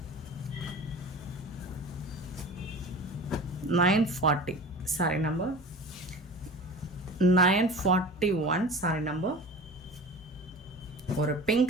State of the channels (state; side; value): normal; both; correlation 0.37